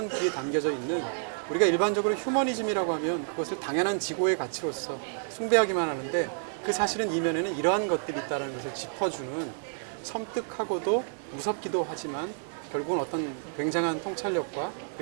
뒤에 담겨져 있는 우리가 일반적으로 휴머니즘이라고 하면 그것을 당연한 지고의 가치로서 숭배하기만 하는데 그 사실은 이면에는 이러한 것들이 있다는 것을 짚어주는 섬뜩하고도 무섭기도 하지만 결국은 어떤 굉장한 통찰력과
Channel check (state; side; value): silent; left; digital silence